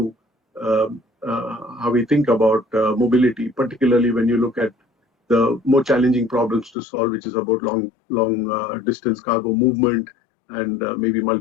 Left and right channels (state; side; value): drops out; right; at 6.8 s